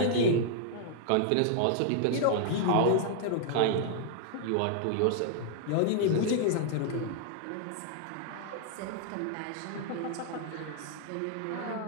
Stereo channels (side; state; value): both; different; correlation -0.01